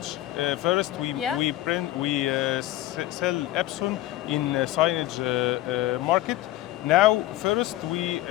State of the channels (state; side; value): quieter; right; 15.6 dB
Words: First, we sell Epson in signage market. Now, first we